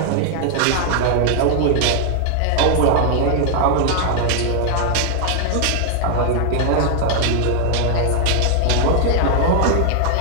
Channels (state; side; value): different; both; correlation 0.00